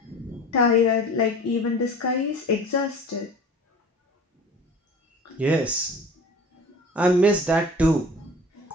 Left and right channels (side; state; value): both; normal; correlation 0.41